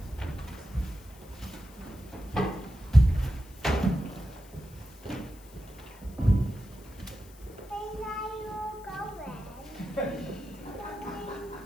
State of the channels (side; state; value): left; noise; hiss, 24 dB below the sound